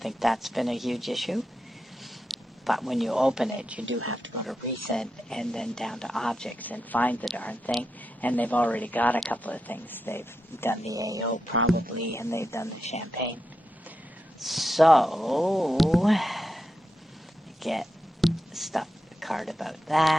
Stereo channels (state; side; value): normal; both; correlation 0.87